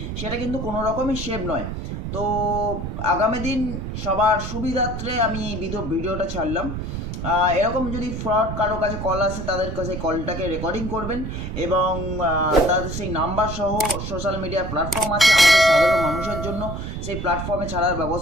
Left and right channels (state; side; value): noise; right; rumble, 6 dB below the sound